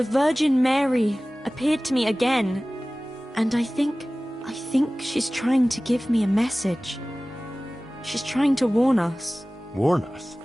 Virgin Mary appeared to me again, and I think she's trying to give me a message. She's trying to warn us. Warn us?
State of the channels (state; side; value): normal; both; correlation 0.98